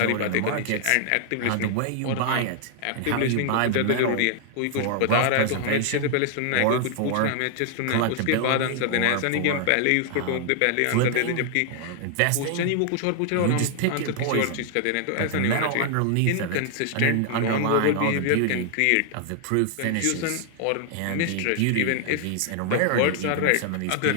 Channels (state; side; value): different; both; correlation 0.00